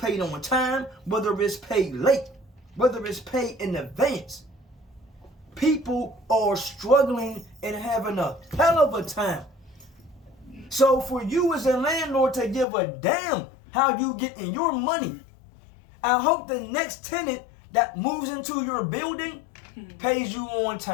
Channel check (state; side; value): drops out; right; at 12.7 s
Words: on time, whether it's paid late, whether it's paid in advance. People are struggling and having a hell of a time. So for you as a landlord to give a damn how you getting your money, I hope the next tenant that moves into your building pays you on